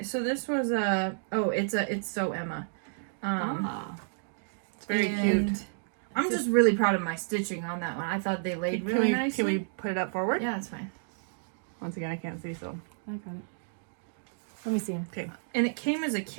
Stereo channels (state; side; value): silent; left; digital silence